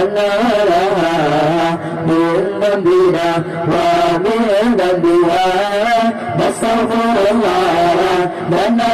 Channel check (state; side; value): identical; both; correlation 1.00